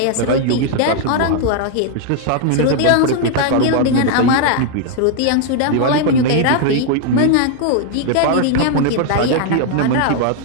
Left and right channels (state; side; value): different; both; correlation 0.00